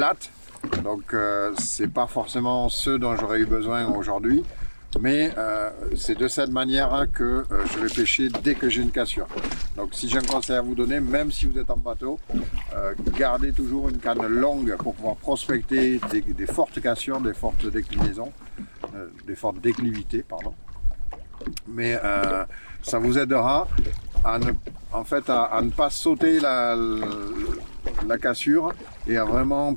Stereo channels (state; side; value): inverted; both; correlation -1.00